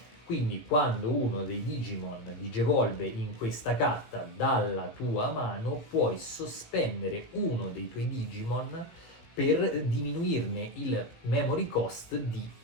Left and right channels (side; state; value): right; late; 17 ms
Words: Quindi quando uno dei Digimon digevolve in questa carta dalla tua mano, puoi sospendere uno dei tuoi Digimon per diminuirne il memory cost di